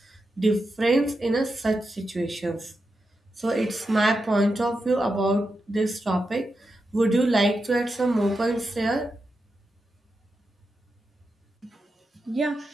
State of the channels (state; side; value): normal; both; correlation 0.88